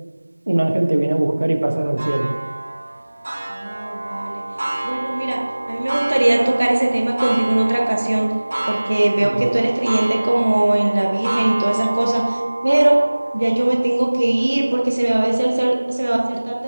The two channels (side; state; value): both; inverted; correlation -1.00